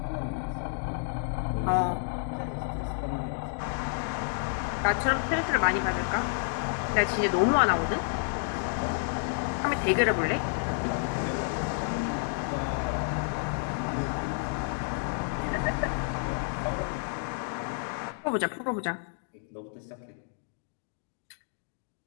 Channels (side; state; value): right; silent; digital silence